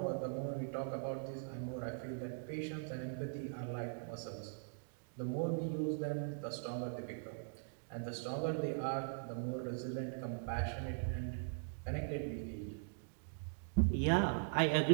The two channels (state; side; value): silent; left; digital silence